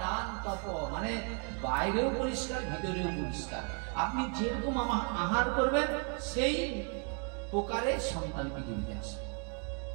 দান, তপ, মানে বাইরেও পরিষ্কার, ভিতরেও পরিষ্কার। আপনি যেরকম আহার করবেন, সেই প্রকারে সন্তান পৃথিবীতে আসবে।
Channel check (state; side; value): quieter; left; 38.3 dB